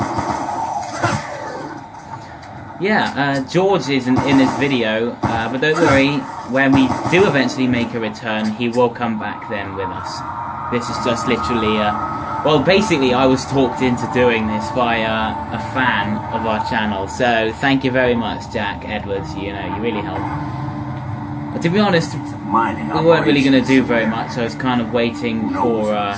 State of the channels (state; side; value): identical; both; correlation 1.00